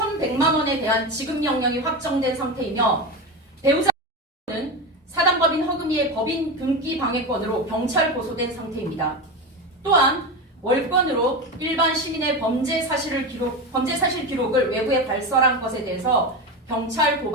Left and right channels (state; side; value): normal; both; correlation 0.20